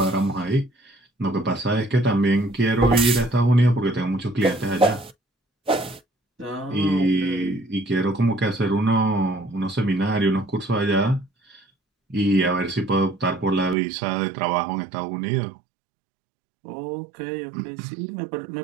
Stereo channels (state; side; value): drops out; left; at 13.8 s